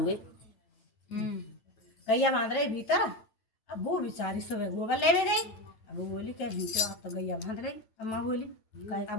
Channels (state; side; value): late; right; 9.0 ms